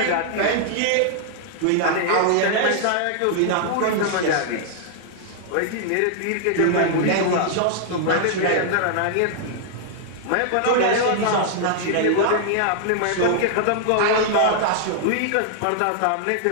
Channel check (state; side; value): different; both; correlation -0.01